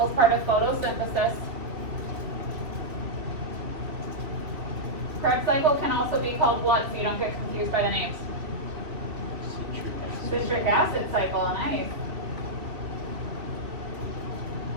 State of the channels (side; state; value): left; late; 2.9 ms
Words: is part of photosynthesis. Krebs cycle can also be called what, so you don't get confused by the names? Citric acid. Citric acid cycle, nice.